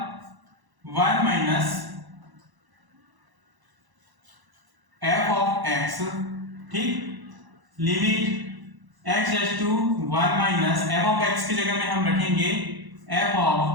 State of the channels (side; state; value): left; late; 1.0 ms